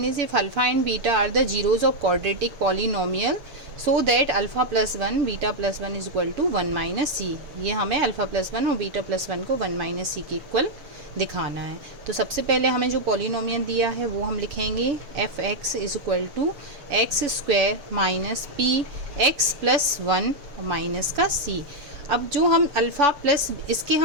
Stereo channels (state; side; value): late; left; 6.9 ms